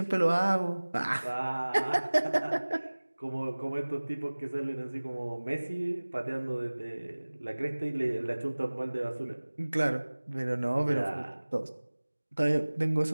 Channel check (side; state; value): both; inverted; correlation -1.00